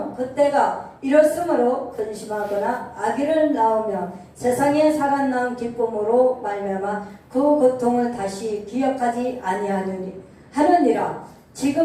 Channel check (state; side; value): identical; both; correlation 1.00